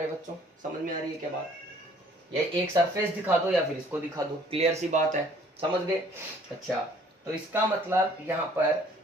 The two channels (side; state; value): both; normal; correlation 0.57